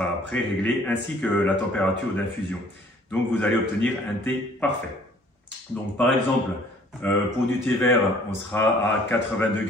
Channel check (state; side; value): normal; both; correlation 0.56